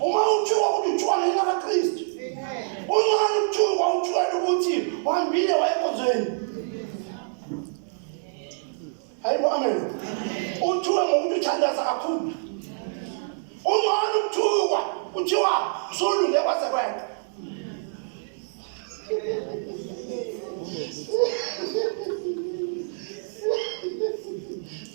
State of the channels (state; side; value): silent; left; 59 dB below the other